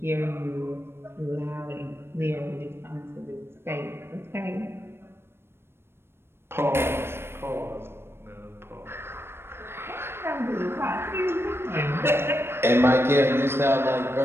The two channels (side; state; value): left; late; 0.12 ms